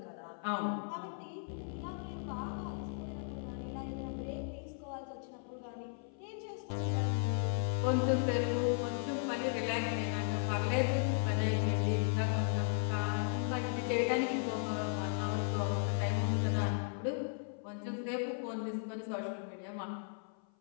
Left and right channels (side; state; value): right; silent; 54 dB below the other